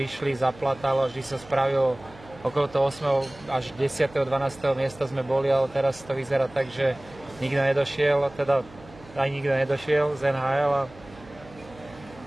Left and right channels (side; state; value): right; noise; hum, 22 dB below the sound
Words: zaplatalo, vždy sa spravilo okolo toho 8. až 10. 12. miesta sme boli, ale teraz to vyzerá tak, že nikto nedošiel, teda aj nikto nedošiel z NHL